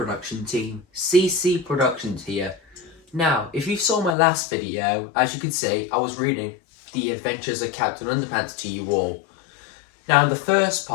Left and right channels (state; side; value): drops out; right; at 4.2 s